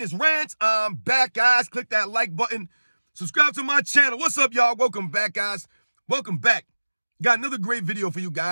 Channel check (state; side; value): inverted; both; correlation -1.00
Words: Rants? I'm back, guys. Click that like button. Subscribe to my channel. What's up, y'all? Welcome back, guys. Welcome back. Got another great video for you